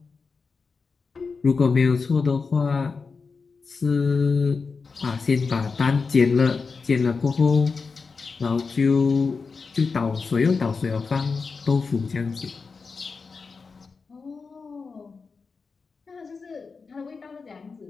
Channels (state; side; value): quieter; right; 4.8 dB